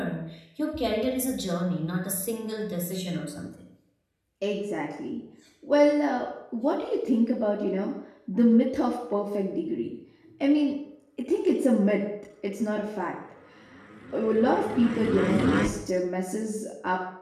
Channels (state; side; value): identical; both; correlation 1.00